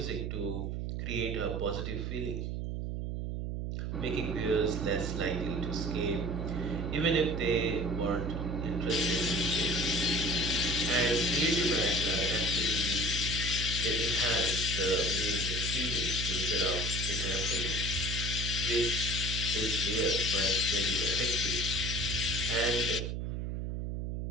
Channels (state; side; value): noise; right; hum, 3 dB below the sound